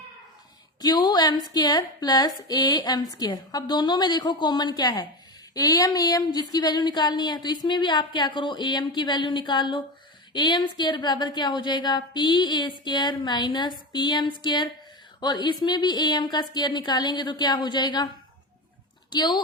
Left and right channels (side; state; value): both; normal; correlation 0.21